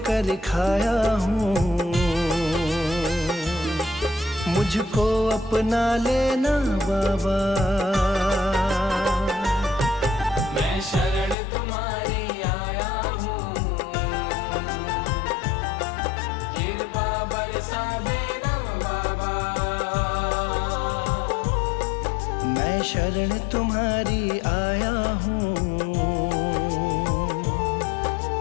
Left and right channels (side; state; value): right; drops out; at 11.4 s